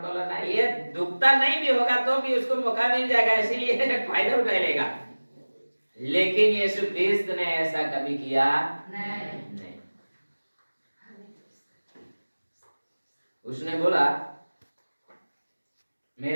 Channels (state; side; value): inverted; both; correlation -1.00